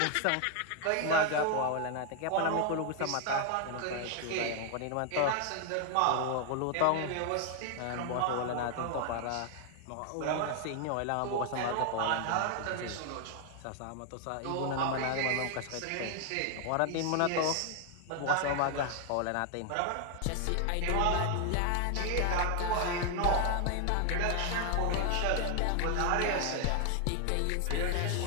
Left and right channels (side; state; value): both; different; correlation 0.00